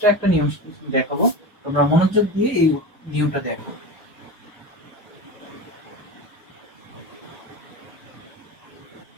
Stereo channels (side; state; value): both; normal; correlation 0.26